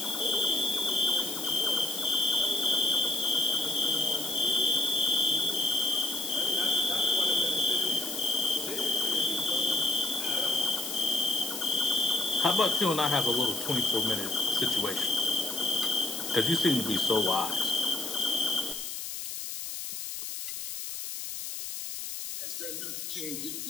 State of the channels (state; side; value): noise; left; hiss, 6 dB below the sound